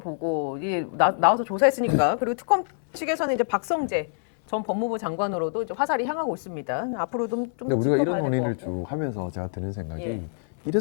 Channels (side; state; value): right; silent; 61 dB below the other